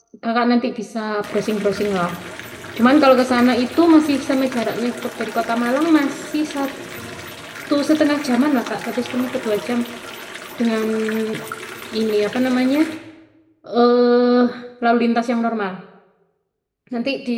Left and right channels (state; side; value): identical; both; correlation 1.00